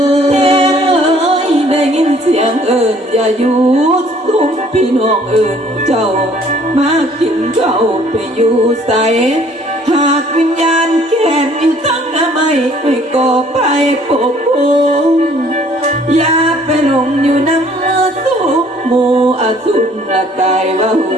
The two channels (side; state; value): both; normal; correlation 0.58